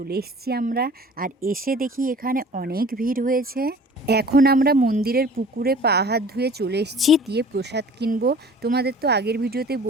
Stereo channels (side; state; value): both; normal; correlation 0.46